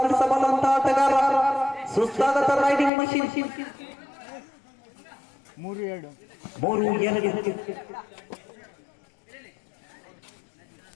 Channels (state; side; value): drops out; right; at 2.9 s